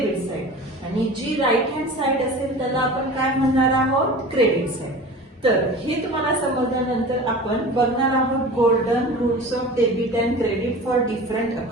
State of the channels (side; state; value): both; normal; correlation 0.36